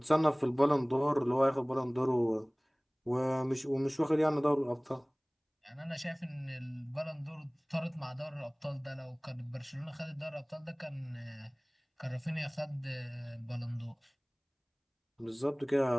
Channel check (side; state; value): both; identical; correlation 1.00